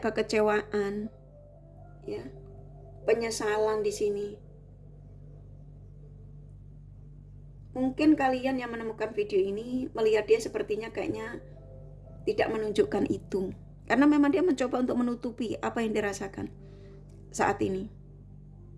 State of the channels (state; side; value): identical; both; correlation 1.00